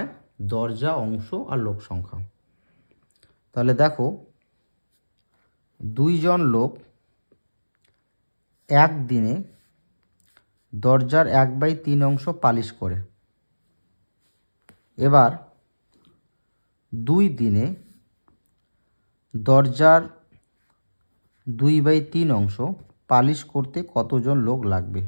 দরজা, অংশ আর লোক সংখ্যা। তাহলে দেখো, দুইজন লোক একদিনে দরজার 1/3 অংশ পালিশ করে। এবার 2 দিনে দরজার 2/3 অংশ পালিশ করতে কতজন লোক লাগবে?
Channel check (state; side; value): inverted; both; correlation -1.00